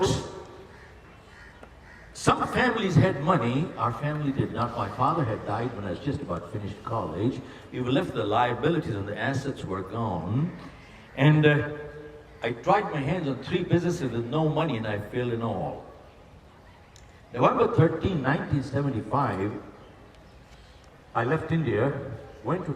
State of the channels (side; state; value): both; identical; correlation 1.00